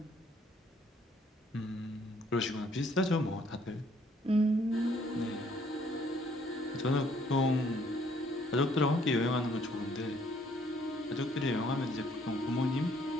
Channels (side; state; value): both; normal; correlation 0.64